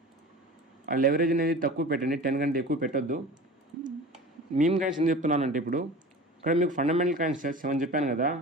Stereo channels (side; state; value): both; normal; correlation 0.37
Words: ఆ లెవరేజ్ అనేది తక్కువ పెట్టండి. 10 కంటే ఎక్కువ పెట్టొద్దు. మీమ్ కాయిన్స్ ఎందుకు చెప్తున్నానంటే ఇప్పుడు ఇక్కడ మీకు ఫండమెంటల్ కాయిన్స్ 7 చెప్పాను కదా,